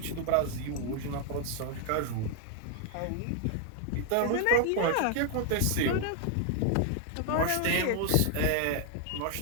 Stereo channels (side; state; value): both; different; correlation 0.00